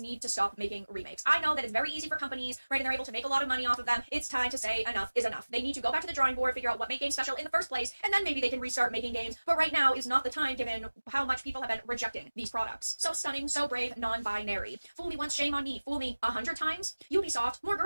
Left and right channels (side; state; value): both; inverted; correlation -1.00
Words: need to stop making remakes. I know that it's very easy for companies, right, and they're able to make a lot of money off of them. It's time to say enough is enough. They need to go back to the drawing board, figure out what made games special in the first place, and then maybe they can restart making games. But right now is not the time, given how much people have been rejecting these products. So stunning, so brave, non-binary. Fool me once, shame on me. Fool me 100 times. Ubisoft, more